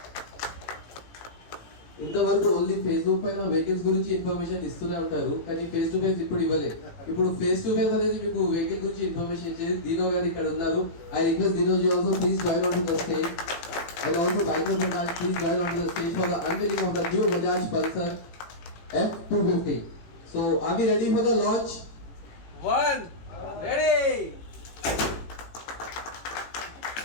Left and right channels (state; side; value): late; right; 18 ms